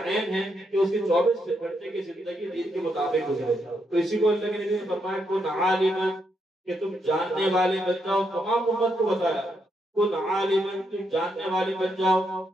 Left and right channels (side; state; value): both; normal; correlation 0.79